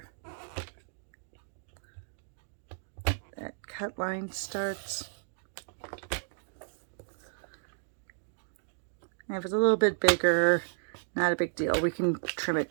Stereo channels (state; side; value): silent; left; digital silence